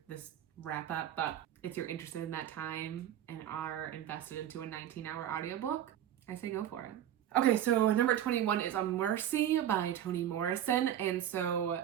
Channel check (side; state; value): left; quieter; 11.0 dB